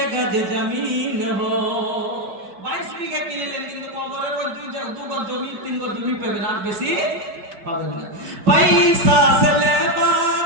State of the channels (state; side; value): late; left; 5.6 ms